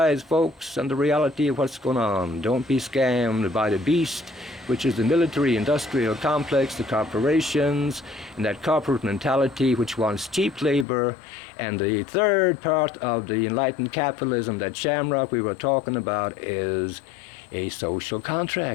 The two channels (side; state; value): right; drops out; at 10.9 s